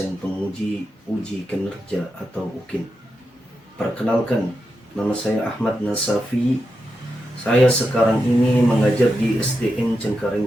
penguji uji kinerja atau UKIN. Perkenalkan, nama saya Ahmad Nasafi. Saya sekarang ini mengajar di SDN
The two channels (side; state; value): both; normal; correlation 0.87